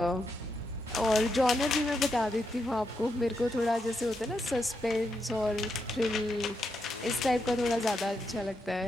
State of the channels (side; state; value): both; normal; correlation 0.83